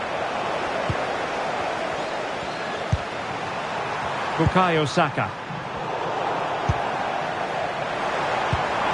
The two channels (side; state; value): both; identical; correlation 1.00